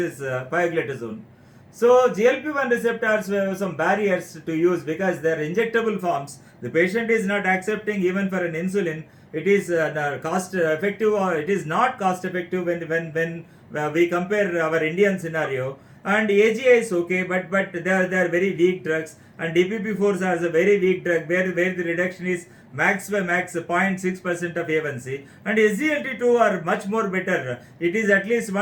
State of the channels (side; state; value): both; identical; correlation 1.00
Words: pioglitazone. So GLP-1 receptors have some barriers to use because they are injectable forms. The patient is not accepting even for an insulin. It is cost effective, or it is not cost effective when we compare our Indian scenario. And AGI is okay, but they are very weak drugs, and DPP-4s are a very weak drug where the reduction is max 0.6% of A1C, and SGLT2 are much more better. It is at least